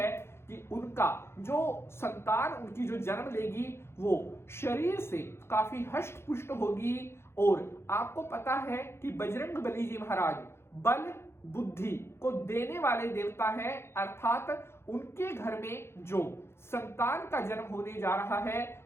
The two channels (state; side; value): late; right; 0.12 ms